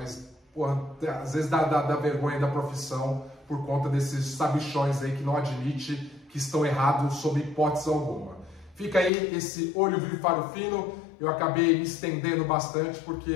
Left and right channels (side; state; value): right; drops out; at 9.1 s